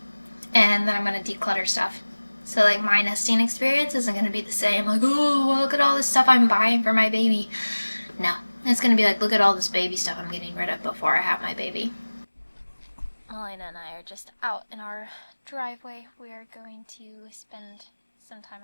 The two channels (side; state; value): both; inverted; correlation -1.00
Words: and then I'm gonna declutter stuff. So like my nesting experience isn't gonna be the same, like, oh, look at all this stuff I'm buying for my baby. No, it's gonna be like, look at all this baby stuff I'm getting rid of before I have my baby. Melina and I are just out in our driveway. We are going to spend some